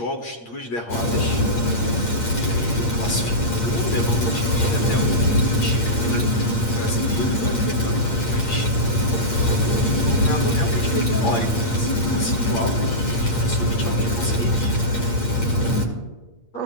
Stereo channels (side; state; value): right; late; 8.6 ms